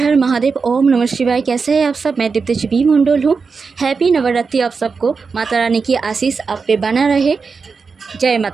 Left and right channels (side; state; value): left; quieter; 5.0 dB